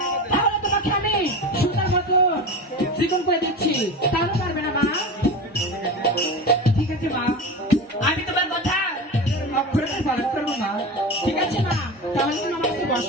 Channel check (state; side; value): normal; both; correlation 0.27